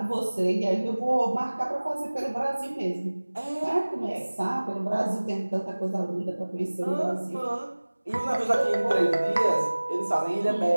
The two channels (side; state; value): both; inverted; correlation -1.00